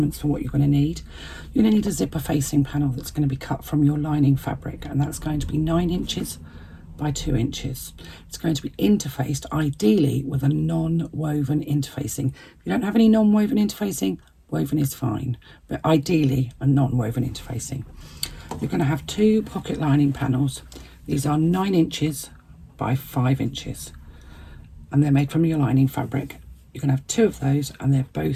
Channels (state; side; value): identical; both; correlation 1.00